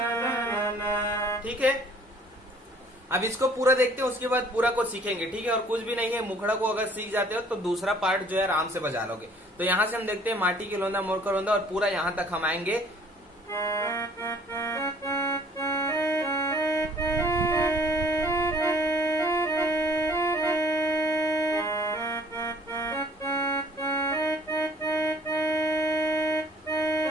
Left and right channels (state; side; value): normal; both; correlation 0.56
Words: ला। ठीक है। अब इसको पूरा देखते हैं, उसके बाद पूरा को सीखेंगे, ठीक है। और कुछ भी नहीं है, मुखड़ा को अगर सीख जाते हो तो दूसरा पार्ट जो है आराम से बजा लोगे। तो यहाँ से हम देखते हैं माटी के लोंदा मोर का रोंदा, और पूरा यहाँ तक हम आएंगे।